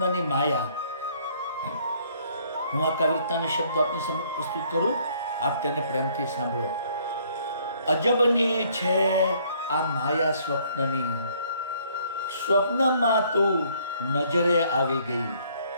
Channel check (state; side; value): inverted; both; correlation -0.63